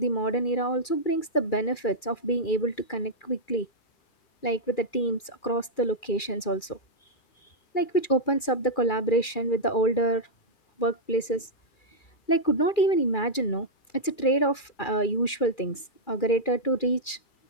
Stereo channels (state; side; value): late; right; 2.4 ms